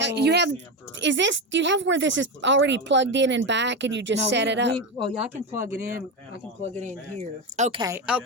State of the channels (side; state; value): both; normal; correlation 0.14